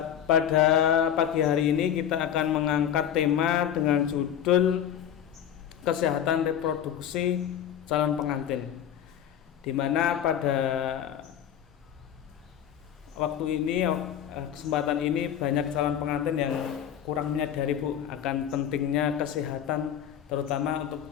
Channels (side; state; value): right; quieter; 9.7 dB